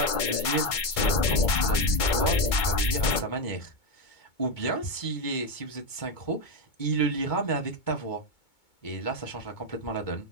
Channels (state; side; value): late; right; 2.2 ms